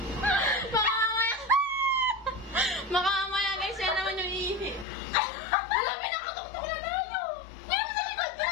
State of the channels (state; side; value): drops out; right; at 4.9 s